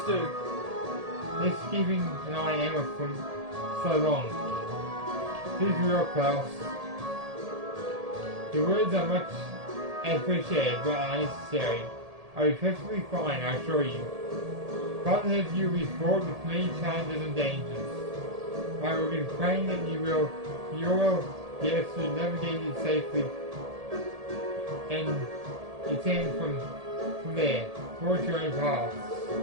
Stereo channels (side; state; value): left; late; 1.8 ms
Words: do. Let's keeping an eye on Emma from so long. Please be well, Klaus. Your words are much appreciated but unnecessary. I'll be perfectly fine, I assure you. Father has you be fraught with many challenges and dangers. I will be praying that you will be able to navigate it safely and return from there, towards your own paths.